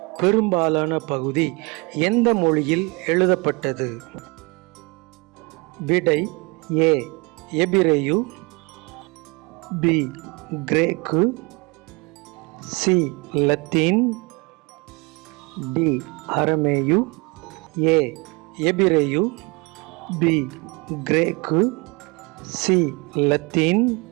பெரும்பாலான பகுதி எந்த மொழியில் எழுதப்பட்டது? விடை ஏ எபிரேயு, பி கிரேக்கு, சி லத்தீன், டி அரமேயு. ஏ எபிரேயு, பி கிரேக்கு, சி லத்தீன்,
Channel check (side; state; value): left; quieter; 28.3 dB